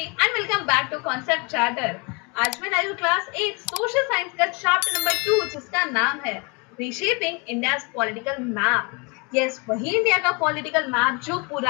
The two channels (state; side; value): quieter; right; 30.3 dB